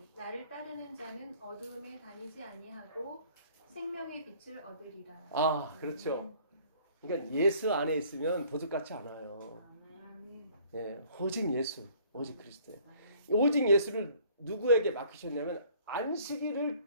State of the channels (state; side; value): inverted; both; correlation -0.56